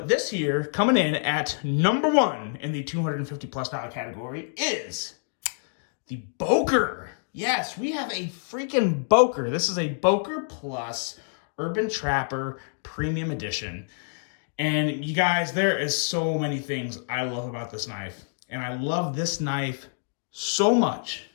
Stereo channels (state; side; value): silent; right; digital silence